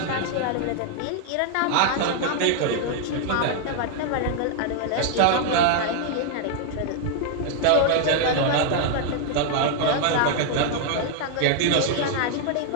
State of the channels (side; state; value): both; different; correlation 0.00